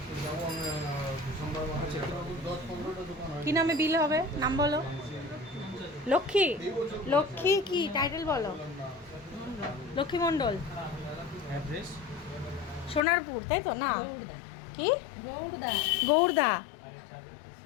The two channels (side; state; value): right; drops out; at 13.0 s